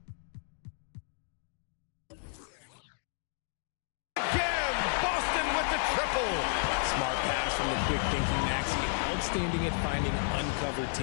again, Boston with the triple. Smart pass from the quick thinking Maxey. Outstanding at finding uncovered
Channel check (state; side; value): silent; right; 56 dB below the other